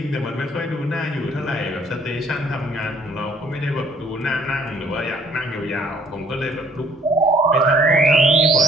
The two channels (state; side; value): normal; both; correlation 0.60